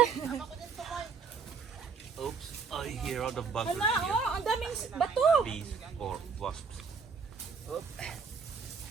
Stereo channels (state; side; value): quieter; left; 5.6 dB